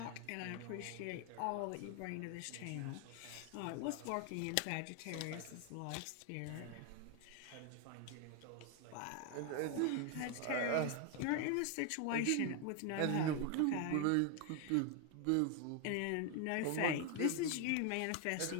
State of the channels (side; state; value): both; different; correlation 0.01